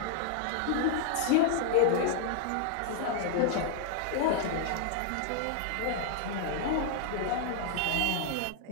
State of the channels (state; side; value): different; both; correlation -0.01